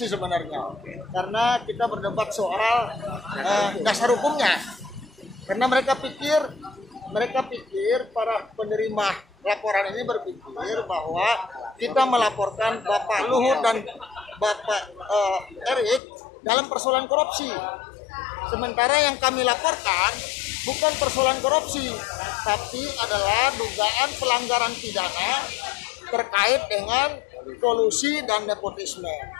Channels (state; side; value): drops out; right; at 16.0 s